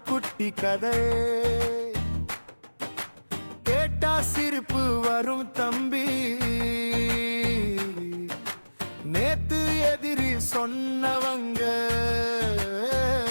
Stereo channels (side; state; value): both; inverted; correlation -1.00